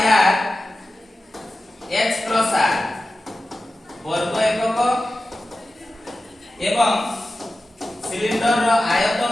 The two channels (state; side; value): normal; both; correlation 0.94